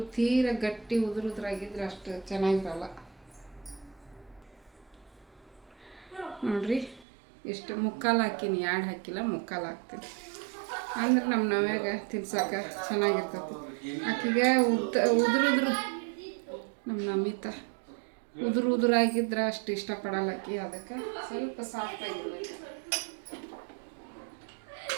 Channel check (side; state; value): left; drops out; at 7.1 s